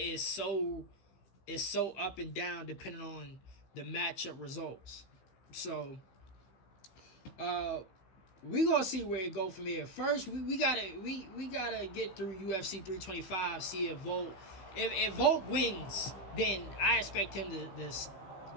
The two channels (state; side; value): late; right; 16 ms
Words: so up and down depending on the matchup results. So we gonna see where it go from here. First, we gotta get through UFC 325. See if Volk, if Volk wins, then I expect him to